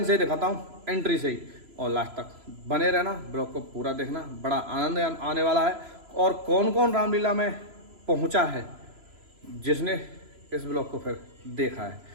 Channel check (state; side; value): late; left; 3.0 ms